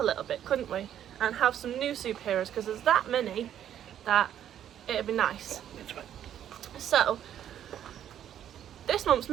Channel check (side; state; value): left; quieter; 10.4 dB